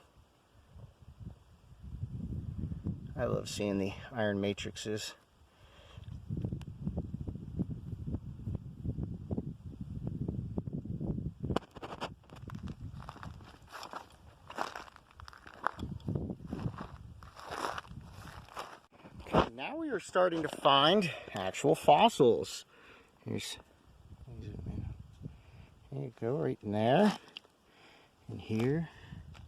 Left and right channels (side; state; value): both; identical; correlation 1.00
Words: I love seeing the iron matrices. Okay, now we are starting to find actual fossils. There you go, right in there, in here,